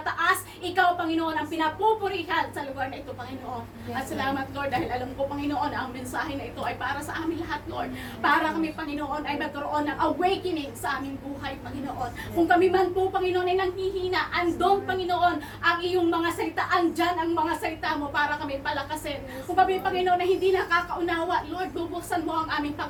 ikaw, Panginoon, ang pinapupurihan sa lugar na ito, Panginoon. At salamat, Lord, dahil alam ko, Panginoon, ang mensahe na ito ay para sa amin lahat, Lord. Para kami, Panginoon, ay magkaroon ng awakening sa aming buhay, Panginoon. Kung kami man po, Panginoon, ay nanghihina, andong, Panginoon, ang iyong mga salita, andyan ang mga salita mo para kami palakasin. Kung kami, Panginoon, na hindi nakakaunawa, Lord, bubuksan mo ang aming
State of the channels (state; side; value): identical; both; correlation 1.00